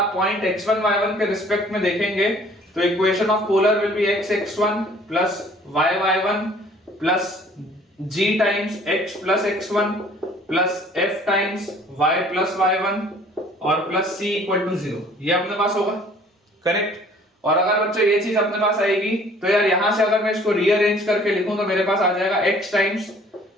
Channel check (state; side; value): normal; both; correlation 0.54